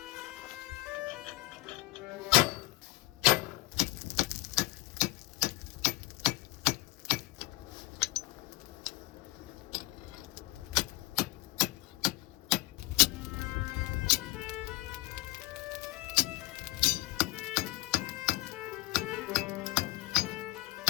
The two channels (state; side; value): quieter; right; 20.0 dB